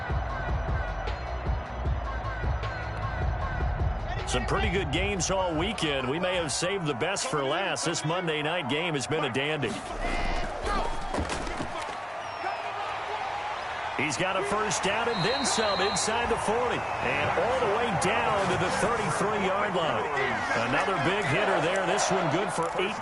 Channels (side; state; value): both; identical; correlation 1.00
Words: Some pretty good games all weekend. We may have saved the best for last. This Monday night game has been a dandy. He's got a first down and then some inside the 40. And all the way down to the 33-yard line. Another big hitter there. This one good for